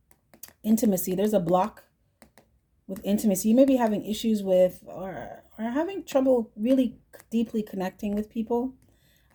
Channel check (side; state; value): both; identical; correlation 1.00